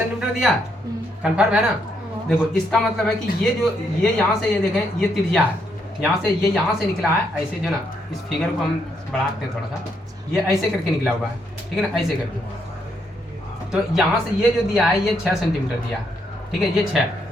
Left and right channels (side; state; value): both; normal; correlation 0.76